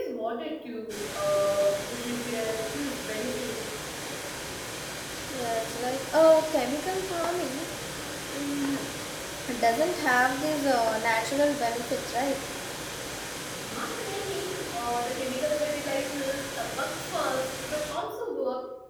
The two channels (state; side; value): identical; both; correlation 1.00